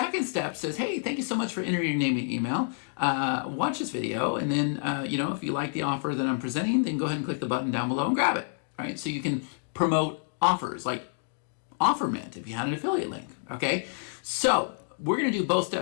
step says, hey, thank you so much for entering your name and email. Watch this video, and then if you like the offer that I'm presenting, then go ahead and click the button down below and grab it. Right, so you can promote offers like OfferMint if you had an affiliate link, okay? So we're gonna do both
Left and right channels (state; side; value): silent; right; digital silence